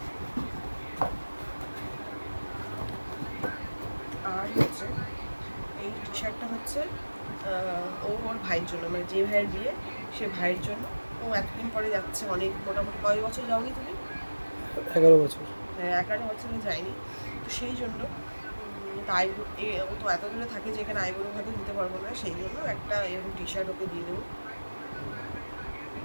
আর হচ্ছে এই টি শার্টটা হচ্ছে ওর ভাইয়ের জন্য, মানে যে ভাইয়ের বিয়ে সে ভাইয়ের জন্য। ও এতদিন পরে যাচ্ছে, অনেক মোটামুটি কয় বছর যাওনি তুমি? 11 বছর। হ্যাঁ, 11 বছরে যায়নি, তো সেই জন্য তাই ও তো এত দূরে থাকে যে এখানে আইবুড়ো ভাতে দিতে পারবো না, সেই জন্য একটা এরকম টি শার্ট ওকে দিয়ে দেবো।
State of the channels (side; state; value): both; inverted; correlation -1.00